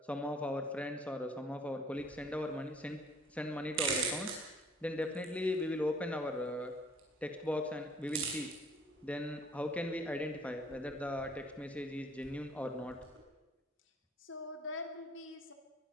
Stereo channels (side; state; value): both; normal; correlation 0.56